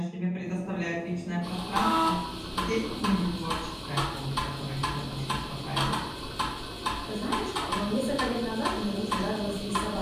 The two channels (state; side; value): identical; both; correlation 1.00